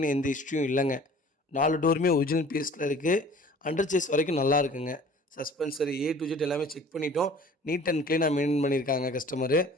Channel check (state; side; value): normal; both; correlation 0.48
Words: எந்த ஹிஸ்ட்ரியும் இல்லைங்க. 4 டோருமே ஒரிஜினல் பீஸில் இருக்குது. அண்டர் சேஸ் வரைக்கும் நல்லா இருக்குங்க. சஸ்பென்சர் A to Z எல்லாமே செக் பண்ணிட்டோம். நீட் அண்ட் க்ளீனாக மெயின்டைன் பண்ணியிருக்காங்க. கஸ்டமரு